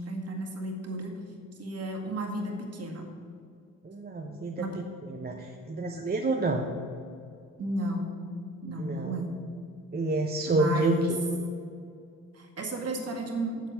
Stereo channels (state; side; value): normal; both; correlation 0.45